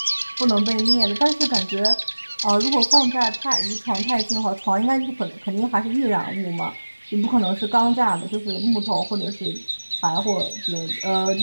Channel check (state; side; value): inverted; both; correlation -1.00